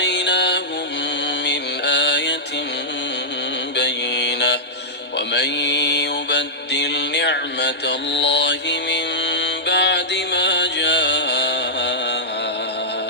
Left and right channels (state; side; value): normal; both; correlation -0.11